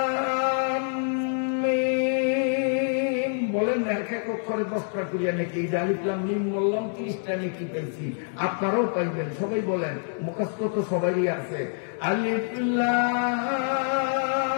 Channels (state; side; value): silent; right; digital silence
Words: মিম। বলেন না এক এক অক্ষরে 10টা করিয়া নাকি? এই আলিফ লাম মিম বললাম, 30টা নাকি পেয়েছি। আপনারাও পাইবেন, সবাই বলেন, মুখস্থ তো সবারই আছে। আলিফ